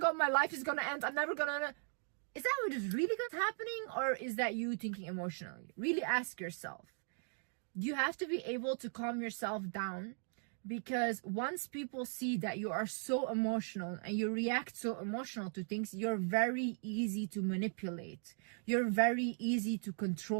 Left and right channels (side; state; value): left; silent; 52 dB below the other